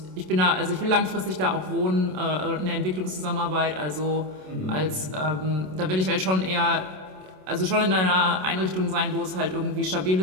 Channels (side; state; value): left; late; 27 ms